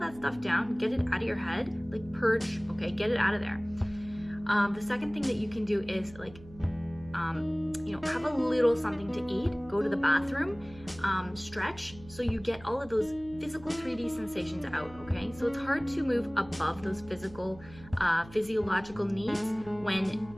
stuff down. Get it out of your head. Like purge. Okay, get it out of there. The second thing that you can do is have a little something to eat, go to the bathroom, stretch, so you get all of those physical 3D sensations out, okay? So it's hard to move above those physiological needs when,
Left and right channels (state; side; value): noise; right; hum, 19 dB below the sound